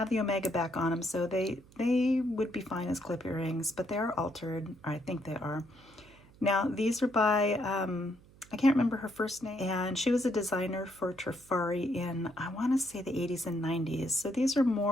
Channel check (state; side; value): noise; right; hum, 25 dB below the sound